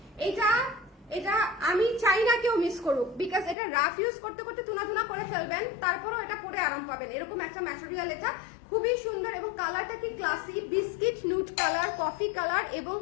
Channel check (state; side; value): drops out; right; at 3.6 s